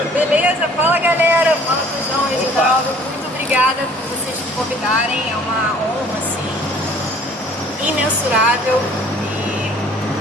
Beleza, fala galera, fala Tujão, Reginaldo. Muito obrigada por vocês me convidarem. É uma honra, assim, imensurável. E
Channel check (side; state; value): both; normal; correlation 0.54